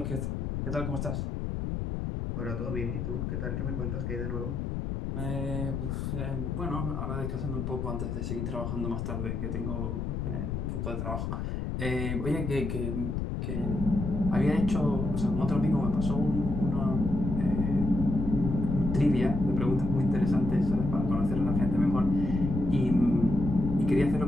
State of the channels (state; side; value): noise; left; rumble, 3 dB below the sound